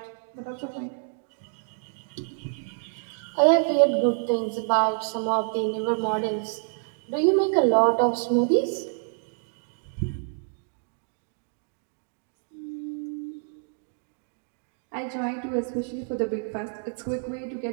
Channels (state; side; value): silent; left; 60 dB below the other